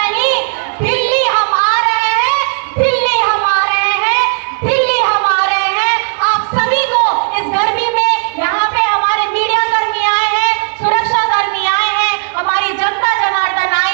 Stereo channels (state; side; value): silent; left; digital silence